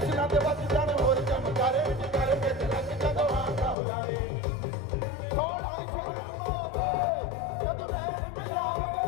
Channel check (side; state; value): right; drops out; at 3.8 s